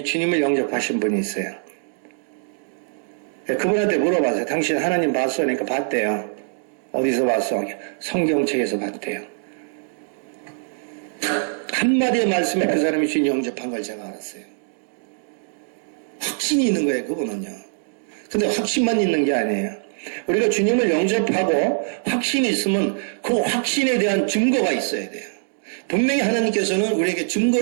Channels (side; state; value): left; silent; digital silence